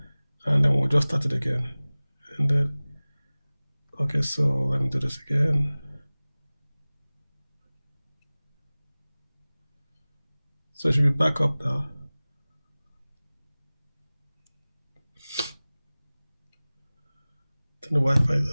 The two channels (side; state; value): both; inverted; correlation -0.99